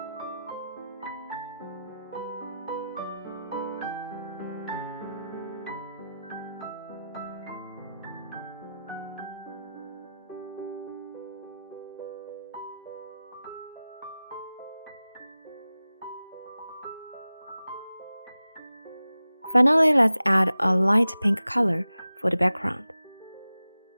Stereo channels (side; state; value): both; inverted; correlation -0.93